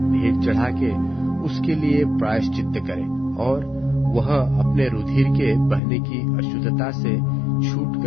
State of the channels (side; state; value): right; drops out; at 5.8 s